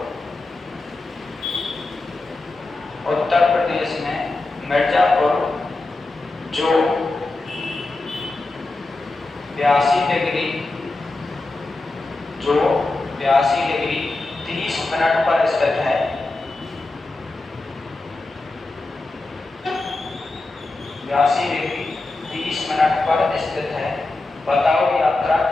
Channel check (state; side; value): quieter; right; 3.1 dB